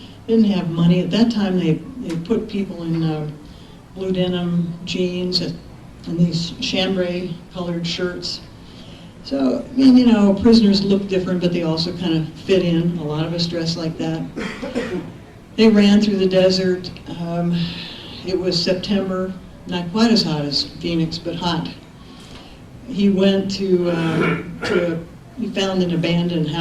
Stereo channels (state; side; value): identical; both; correlation 1.00